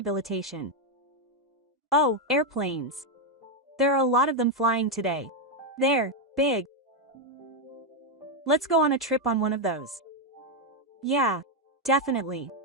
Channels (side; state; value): both; normal; correlation 0.04